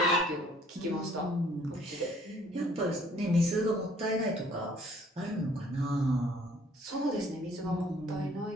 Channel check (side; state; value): both; normal; correlation 0.59